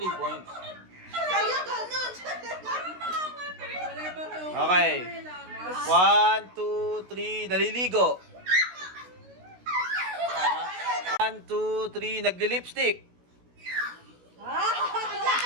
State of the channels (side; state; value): left; late; 16 ms